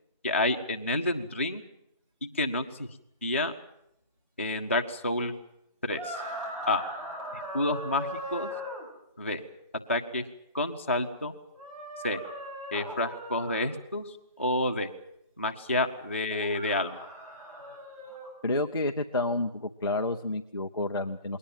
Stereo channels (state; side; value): inverted; both; correlation -0.35